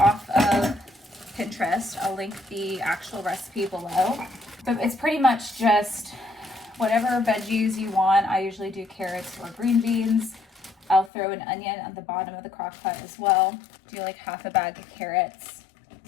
of Pinterest. I'll link the actual recipe below. But it's pretty much just whatever veggies you want. I usually do carrots or green beans. I'll throw an onion at the bottom of the crock pot as well. Do like half a bag of carrots.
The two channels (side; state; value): right; drops out; at 11.1 s